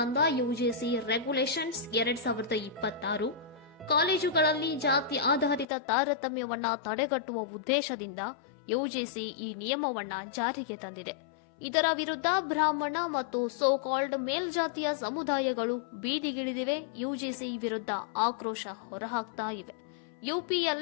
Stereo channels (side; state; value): right; drops out; at 5.7 s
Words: ಯುಜಿಸಿ ರೆಗ್ಯುಲೇಷನ್ಸ್ 2026 ಕಾಲೇಜುಗಳಲ್ಲಿ ಜಾತಿ ಆಧಾರಿತ ತಾರತಮ್ಯವನ್ನ ತಡೆಗಟ್ಟುವ ಉದ್ದೇಶದಿಂದ ಯುಜಿಸಿ ಈ ನಿಯಮವನ್ನ ಜಾರಿಗೆ ತಂದಿದೆ. ಇದರ ವಿರುದ್ಧ ಬ್ರಾಹ್ಮಣ ಮತ್ತು ಸೋಕಾಲ್ಡ್ ಮೇಲ್ಜಾತಿಯ ಸಮುದಾಯಗಳು ಬೀದಿಗಿಳಿದಿವೆ. ಯುಜಿಸಿ ವಿರುದ್ಧ ಆಕ್ರೋಶ ಹೊರಹಾಕ್ತಾ ಇವೆ.